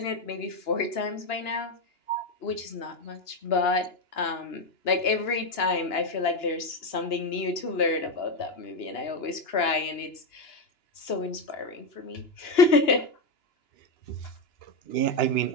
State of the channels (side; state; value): right; late; 2.9 ms